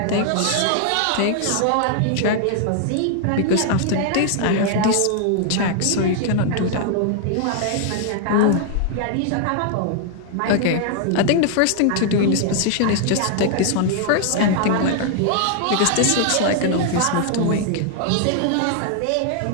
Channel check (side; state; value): both; different; correlation 0.00